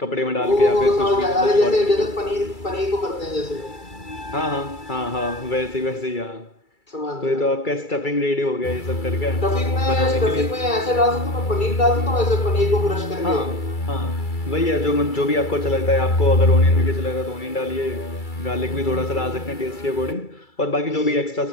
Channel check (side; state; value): right; late; 2.3 ms